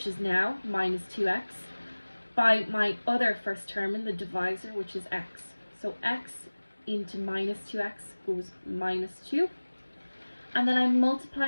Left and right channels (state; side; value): inverted; both; correlation -1.00